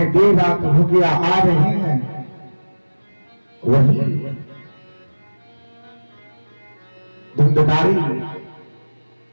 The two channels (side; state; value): both; inverted; correlation -1.00